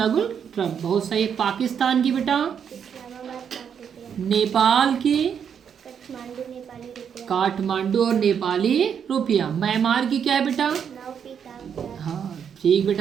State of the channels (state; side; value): quieter; left; 7.7 dB